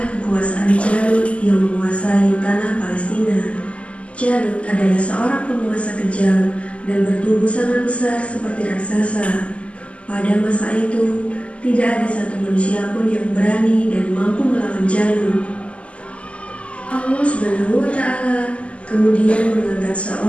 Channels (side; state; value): right; late; 0.060 ms